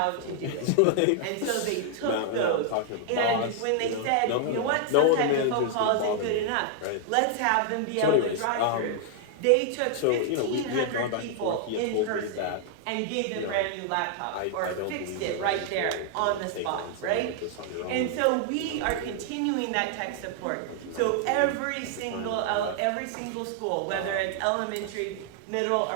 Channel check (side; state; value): both; different; correlation 0.00